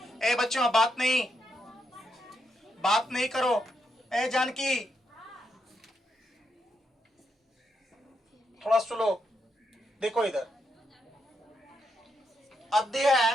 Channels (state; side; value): normal; both; correlation 0.81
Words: ए बच्चों, बात नहीं करो। ए जानकी, थोड़ा सुनो, देखो इधर।